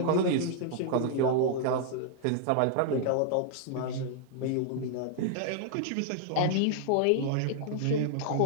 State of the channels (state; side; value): different; both; correlation -0.01